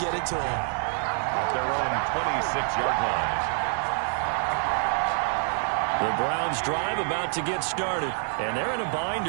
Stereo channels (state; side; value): silent; left; 60 dB below the other